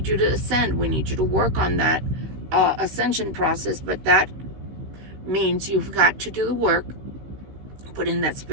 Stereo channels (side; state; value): left; late; 16 ms